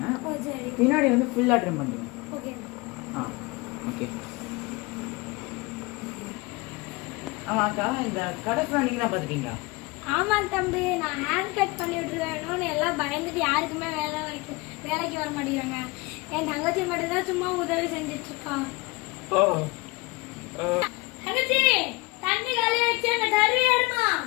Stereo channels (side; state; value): right; quieter; 24.3 dB